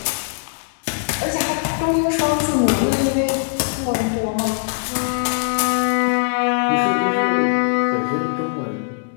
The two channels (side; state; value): right; silent; digital silence